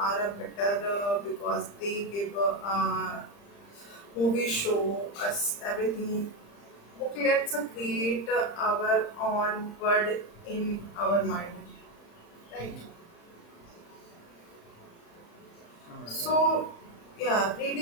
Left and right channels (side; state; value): right; late; 35 ms